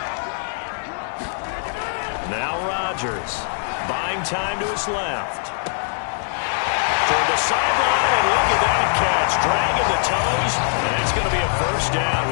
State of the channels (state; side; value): silent; right; digital silence